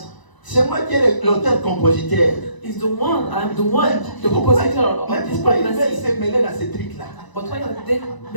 C'est moi qui est l'auteur-compositeur. It's the one, I'm the one, the compositor Mais of this pourquoi ils veulent pregnancy. se mêler dans ces trucs-là? But why are they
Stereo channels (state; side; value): late; right; 1.0 ms